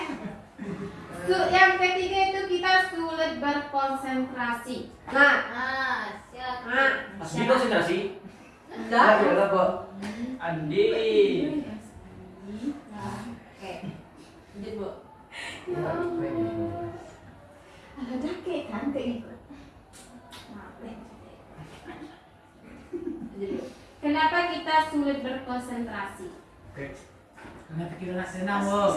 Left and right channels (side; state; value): both; identical; correlation 1.00